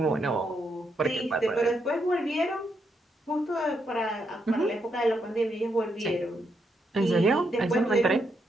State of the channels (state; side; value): normal; both; correlation 0.79